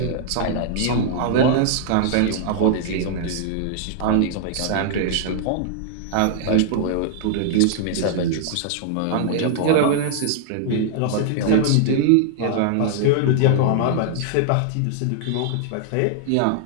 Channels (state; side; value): different; both; correlation -0.01